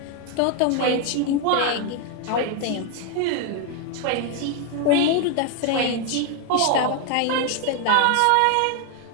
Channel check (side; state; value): both; different; correlation 0.01